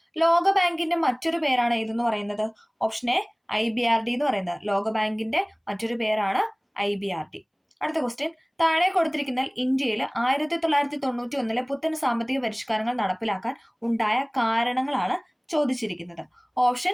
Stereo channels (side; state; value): both; identical; correlation 1.00